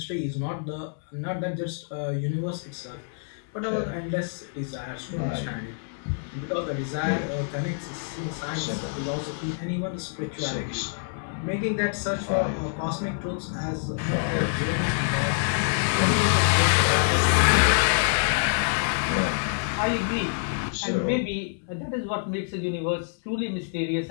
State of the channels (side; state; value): right; silent; digital silence